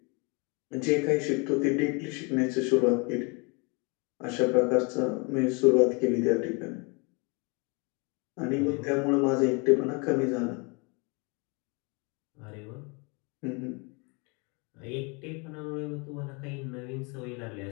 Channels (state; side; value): quieter; right; 31.4 dB